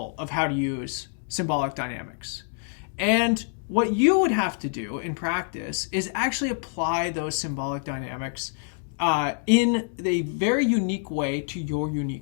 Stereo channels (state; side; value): silent; right; 61 dB below the other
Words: of how to use symbolic dynamics. And what you would have to do in practice is actually apply those symbolic dynamics in a very unique way to your